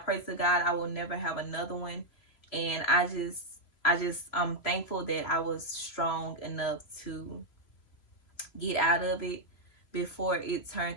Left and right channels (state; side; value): late; right; 3.0 ms